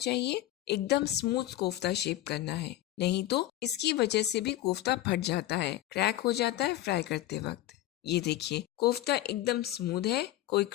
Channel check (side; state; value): right; quieter; 14.4 dB